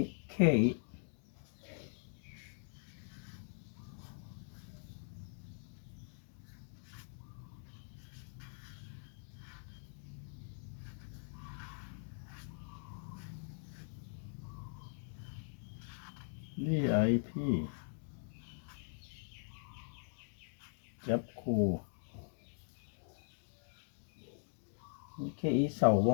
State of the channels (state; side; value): silent; right; digital silence